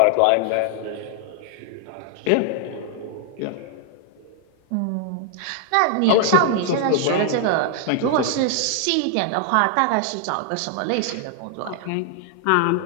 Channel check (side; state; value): both; different; correlation 0.00